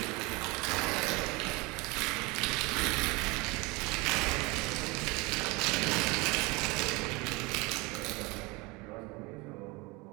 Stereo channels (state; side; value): quieter; left; 25.3 dB